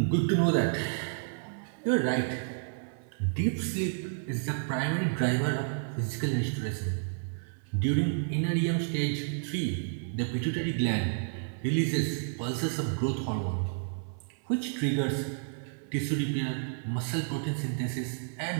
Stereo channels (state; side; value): silent; left; 56 dB below the other